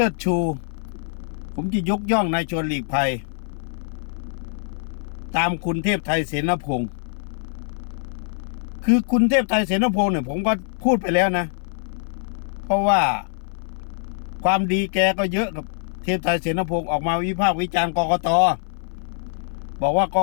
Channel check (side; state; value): right; silent; 59 dB below the other